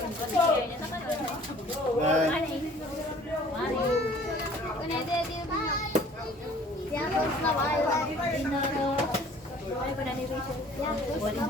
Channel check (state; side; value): normal; both; correlation 0.52